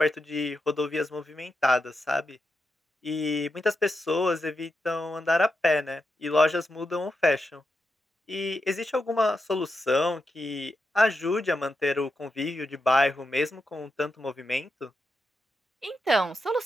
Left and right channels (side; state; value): both; normal; correlation 0.86